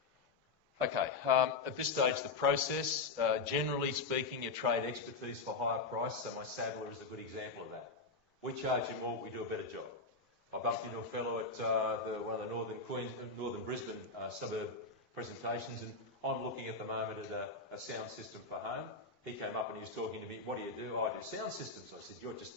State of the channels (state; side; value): quieter; right; 4.2 dB